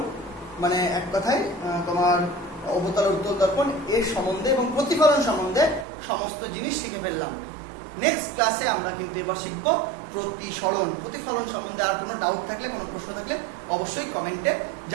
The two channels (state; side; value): drops out; left; at 5.9 s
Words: মানে এক কথায় তোমার অবতল উত্তল দর্পণ এর সম্বন্ধে এবং প্রতিফলন সম্বন্ধে সমস্ত জিনিস শিখে ফেললাম। নেক্সট ক্লাসে আমরা কিন্তু এবার শিখবো প্রতিসরণ, প্রতিফলন সম্বন্ধে। আর কোনো ডাউট থাকলে, কোনো প্রশ্ন থাকলে অবশ্যই কমেন্টে